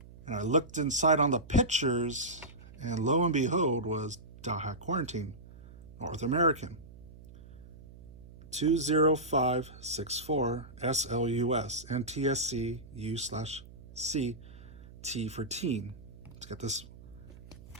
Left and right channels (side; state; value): right; noise; hum, 19 dB below the sound